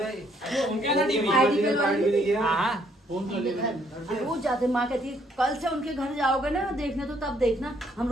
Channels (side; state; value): both; normal; correlation 0.68